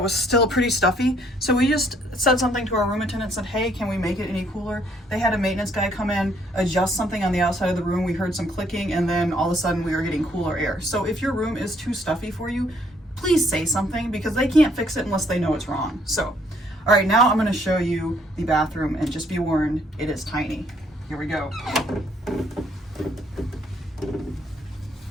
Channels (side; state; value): both; normal; correlation 0.66